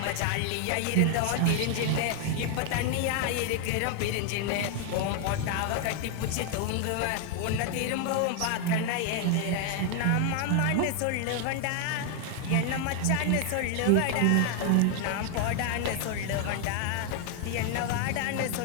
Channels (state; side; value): different; both; correlation 0.00